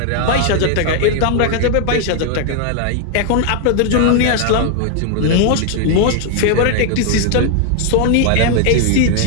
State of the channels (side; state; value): both; different; correlation 0.00